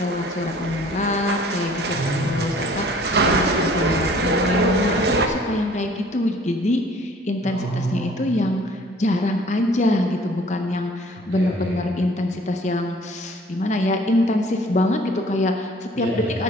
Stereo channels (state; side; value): normal; both; correlation 0.53